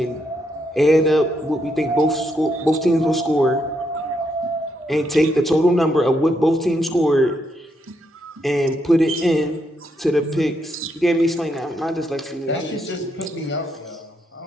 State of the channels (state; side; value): normal; both; correlation 0.78